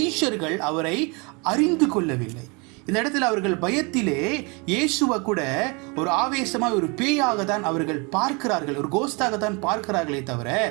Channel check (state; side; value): quieter; left; 30.3 dB